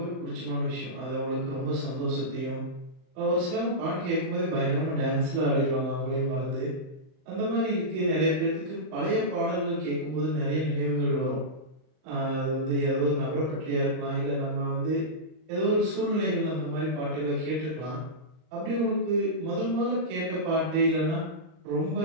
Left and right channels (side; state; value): left; late; 39 ms